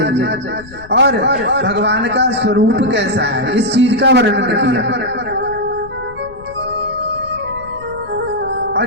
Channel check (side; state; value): left; noise; rumble, 19 dB below the sound